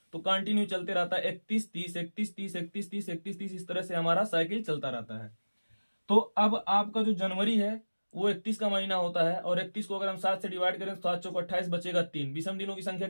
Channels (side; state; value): both; inverted; correlation -1.00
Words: तो कंटिन्यू चलते रहता है, 31, 30, 31, 30, 31, 30, 31, 30, इस तरह से हमारा साइकिल चलता रहता है। तो अब आपका जो जनवरी है वो 31 का महीना होता है, और 31 को अगर हम 7 से डिवाइड करें तो 7 चौक 28, बचेगा 3। विषम दिनों की संख्या